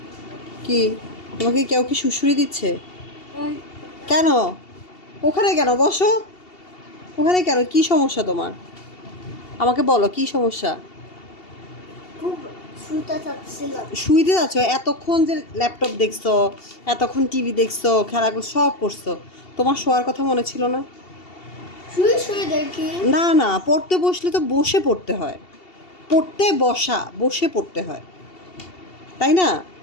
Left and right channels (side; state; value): right; late; 2.7 ms